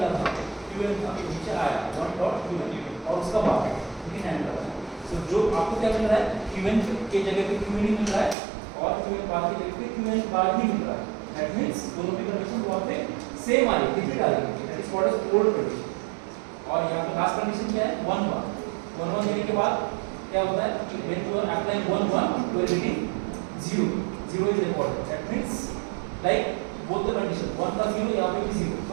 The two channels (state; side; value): drops out; left; at 8.3 s